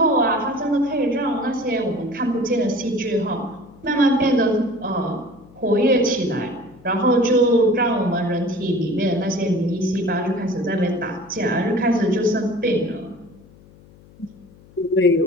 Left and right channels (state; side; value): noise; left; hum, 25 dB below the sound